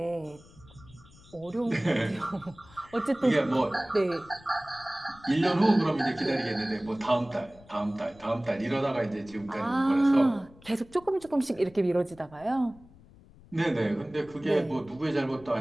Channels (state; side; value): noise; left; rumble, 24 dB below the sound